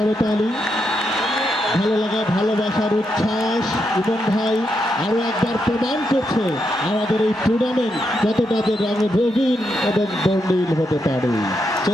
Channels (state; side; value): normal; both; correlation 0.82